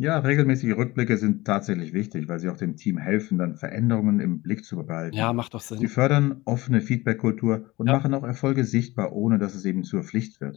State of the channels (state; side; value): quieter; right; 20.3 dB